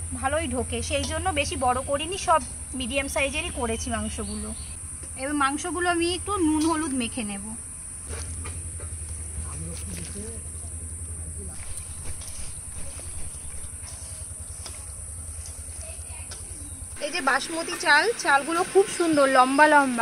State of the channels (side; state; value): both; identical; correlation 1.00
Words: ভালোই ঢোকে, সেই জন্য বেশি বড় করিনি, সব মিডিয়াম সাইজেরই করেছি মাংসগুলো। এবার মাংসগুলো আমি একটু নুন হলুদ মেখে নেব। এই যে বাসমতি চালগুলো খুব সুন্দর লম্বা